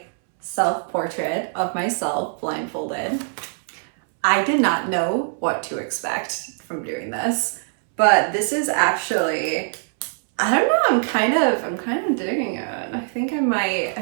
self-portrait of myself blindfolded. I did not know what to expect from doing this, but this is actually, I don't know, I'm kind of digging it. I think I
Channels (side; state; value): left; silent; 64 dB below the other